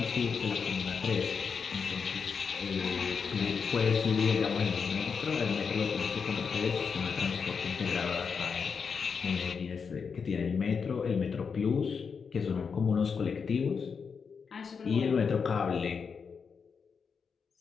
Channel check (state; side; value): quieter; right; 5.9 dB